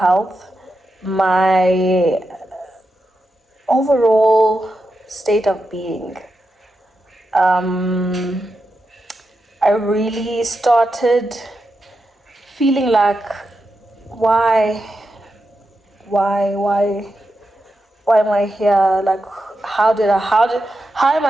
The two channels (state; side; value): normal; both; correlation 0.88